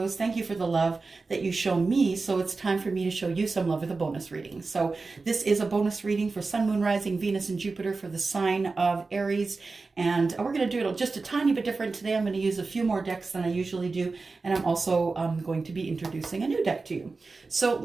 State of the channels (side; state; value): left; quieter; 4.0 dB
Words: Thank you for the love that you show me. So it's time for me to show you some love with a bonus reading. So this is a bonus reading for Sun, Moon, Rising, Venus, and Jupiter for the sign of Aries. And we're going to do it just a tiny bit different today. I'm going to use a few more decks than I usually do. And I'm also going to be introducing a new deck to you. So